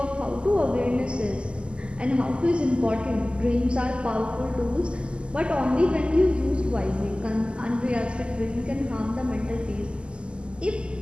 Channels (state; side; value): late; left; 0.051 ms